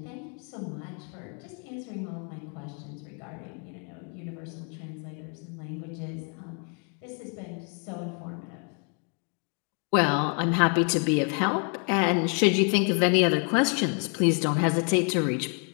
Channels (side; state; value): right; quieter; 39.6 dB